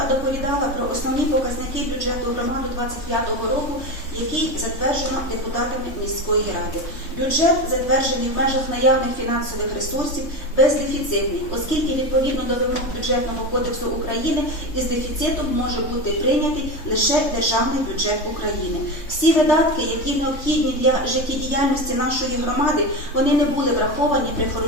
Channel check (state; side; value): late; right; 3.6 ms